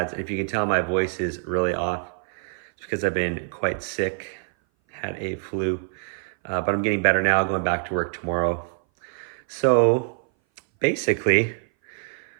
And if you can tell, my voice is really off. It's because I've been quite sick, had a flu, but I'm getting better now, going back to work tomorrow. So basically,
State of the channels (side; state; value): left; silent; 58 dB below the other